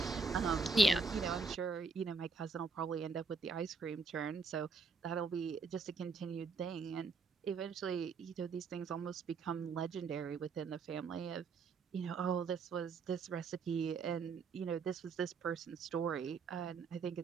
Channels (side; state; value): left; quieter; 4.6 dB